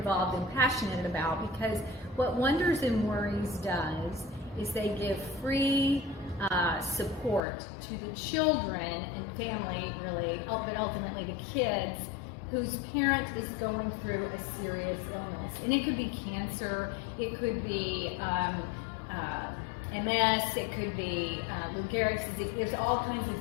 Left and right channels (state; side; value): drops out; right; at 7.4 s